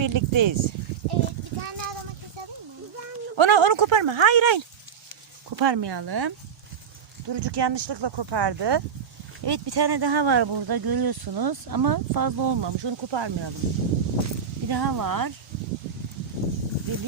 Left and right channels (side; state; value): left; quieter; 7.1 dB